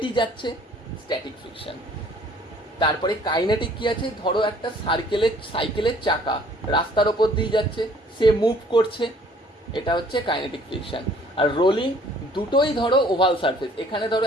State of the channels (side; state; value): both; normal; correlation 0.57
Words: যাচ্ছে, স্ট্যাটিক ফ্রিকশন। তারপরে কাইনেটিক কি আছে, ধরো একটা সাইকেলের চাকা রাস্তার ওপর দিয়ে যাচ্ছে, সে মুভ করছে, এটা হচ্ছে কাইনেটিক ফ্রিকশন। আর রোলিং, দুটোই ধরো ওভাল সারফেস, এখানে ধরো